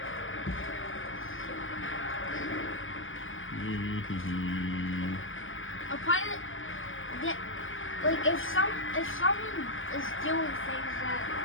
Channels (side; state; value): right; late; 0.58 ms